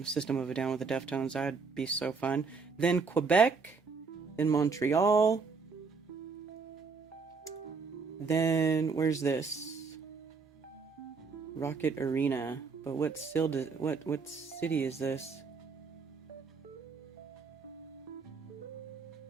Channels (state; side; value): quieter; left; 4.8 dB